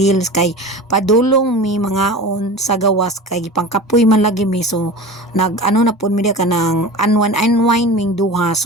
kay padulong mi mga on sa gawas kay pangkapoy man lagi mi so nag ano na pud mi ka ng unwind ming duha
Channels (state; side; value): normal; both; correlation 0.33